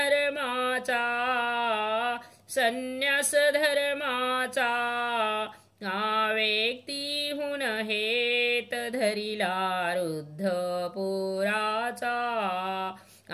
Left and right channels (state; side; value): identical; both; correlation 1.00